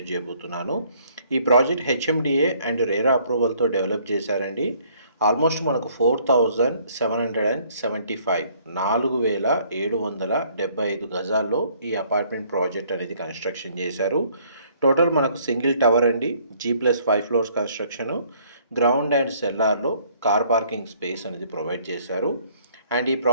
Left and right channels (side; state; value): both; inverted; correlation -0.62